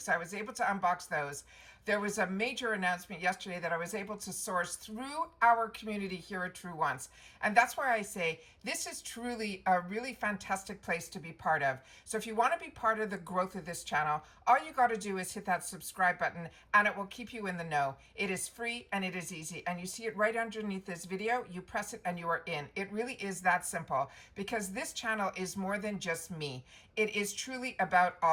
So I was able to unbox those. There was a major announcement yesterday that I was able to source through our community here at Truewants. And that's why I say this is truly a really fantastic place to be part of. So if you want to be part of the growth of this channel, all you got to do is hit that subscribe button and it will keep you in the know. It is free and it is easy. And you see it right underneath this video. You press it and you are in. It really is that simple, because this channel is more than just me. It is truly about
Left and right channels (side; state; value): both; identical; correlation 1.00